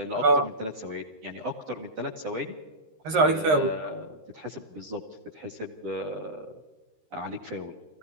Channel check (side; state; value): left; late; 13 ms